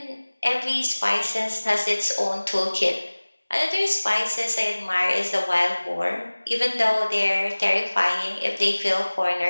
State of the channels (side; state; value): both; inverted; correlation -1.00